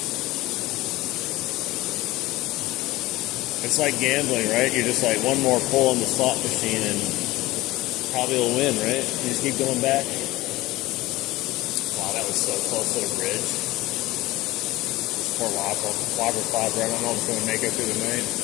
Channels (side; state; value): right; quieter; 18.6 dB